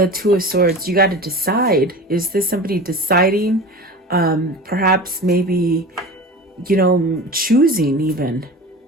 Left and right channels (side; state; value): both; normal; correlation 0.34